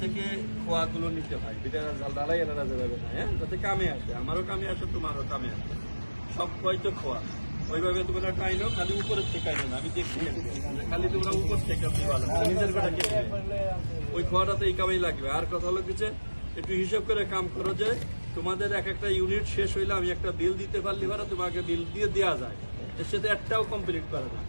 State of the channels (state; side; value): inverted; both; correlation -1.00